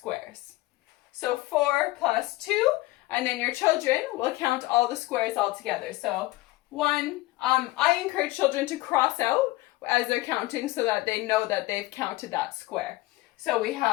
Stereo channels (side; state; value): right; quieter; 19.5 dB